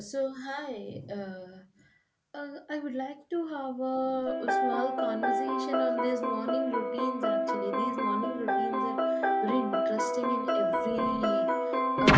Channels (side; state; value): both; identical; correlation 1.00